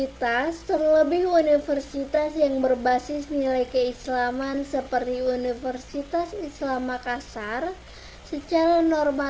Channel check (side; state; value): both; identical; correlation 1.00